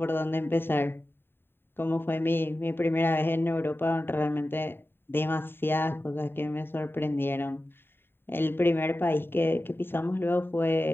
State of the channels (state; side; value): late; right; 0.11 ms